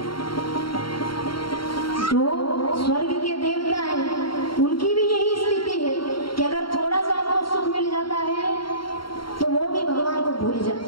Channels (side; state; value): right; late; 0.73 ms